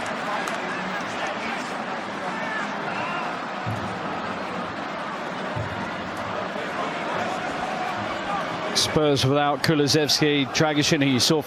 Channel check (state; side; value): identical; both; correlation 1.00